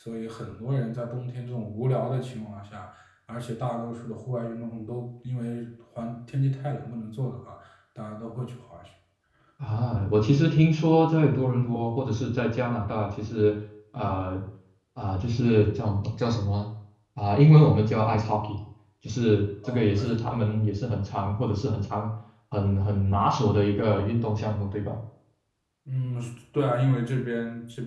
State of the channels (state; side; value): identical; both; correlation 1.00